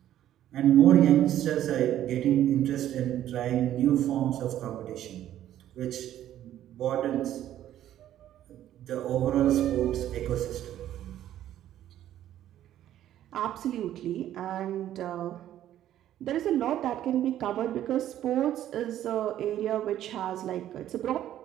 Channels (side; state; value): left; quieter; 12.0 dB